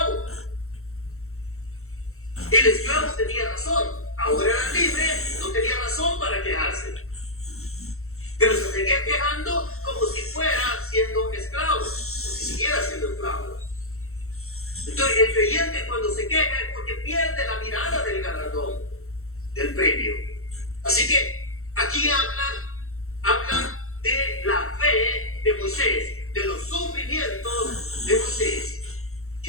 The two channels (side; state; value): right; late; 0.63 ms